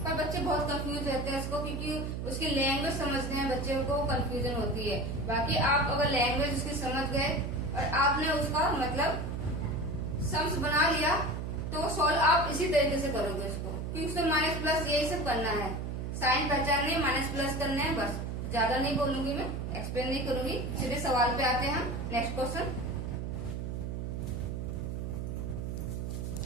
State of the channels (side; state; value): right; noise; hum, 4 dB below the sound